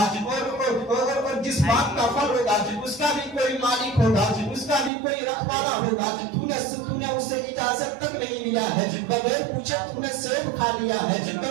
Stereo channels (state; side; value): drops out; left; at 4.9 s